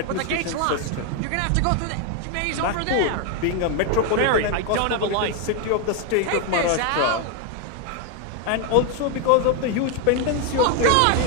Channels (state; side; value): different; both; correlation 0.01